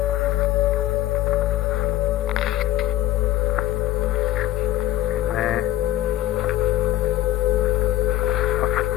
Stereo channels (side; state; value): right; quieter; 14.1 dB